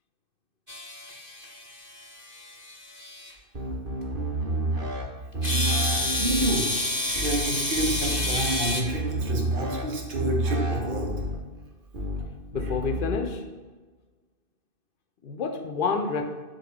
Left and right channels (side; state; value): left; late; 2.5 ms